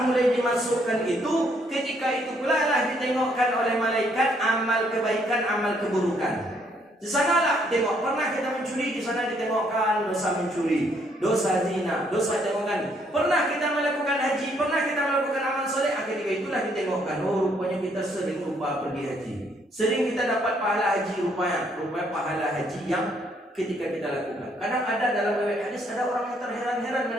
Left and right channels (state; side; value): normal; both; correlation 0.69